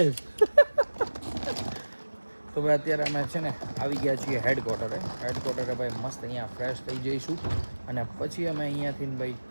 તો ભાઈ અત્યારે અમે છે ને આવી ગયા છીએ હેડક્વાર્ટરે ભાઈ મસ્ત અહીંયા ફ્રેશ થઈ જઈશું અને પછી અમે અહીંયાથી ભાઈ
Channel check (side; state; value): both; inverted; correlation -1.00